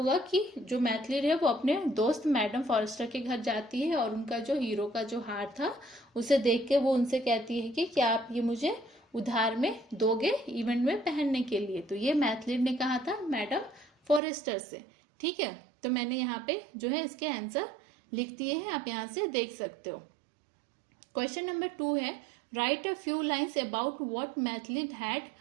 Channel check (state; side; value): drops out; left; at 14.2 s